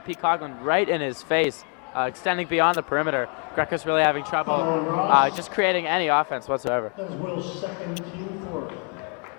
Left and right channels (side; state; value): right; quieter; 38.0 dB